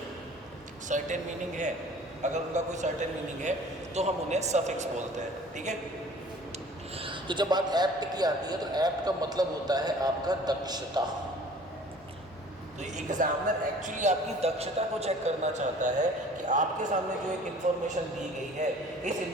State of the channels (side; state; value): both; normal; correlation 0.49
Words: सर्टेन मीनिंग है, अगर उनका कोई सर्टेन मीनिंग है तो हम उन्हें सफिक्स बोलते हैं, ठीक है। तो जब बात एप्ट की आती है तो एप्ट का मतलब होता है आपका दक्षता। तो एग्जामिनर एक्चुअली आपकी दक्षता को चेक करना चाहता है कि आपके सामने जो एक इन्फॉर्मेशन दी गई है, इस